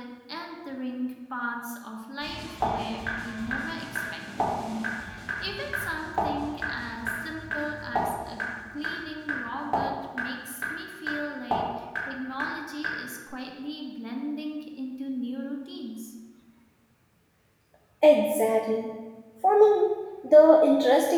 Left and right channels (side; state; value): both; identical; correlation 1.00